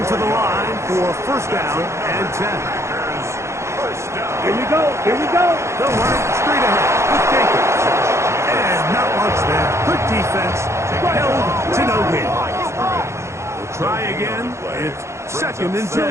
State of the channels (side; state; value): left; late; 0.13 ms